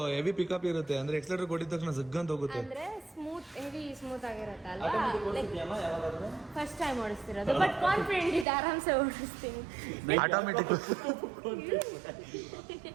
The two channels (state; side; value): drops out; left; at 8.5 s